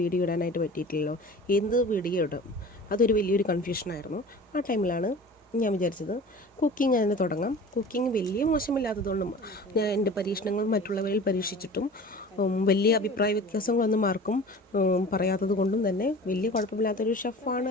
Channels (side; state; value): both; normal; correlation 0.40